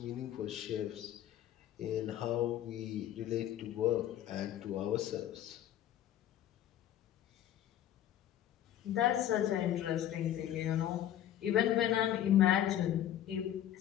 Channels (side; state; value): right; quieter; 11.6 dB